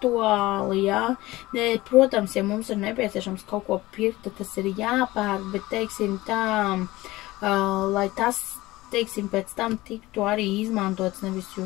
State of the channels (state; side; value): quieter; right; 18.8 dB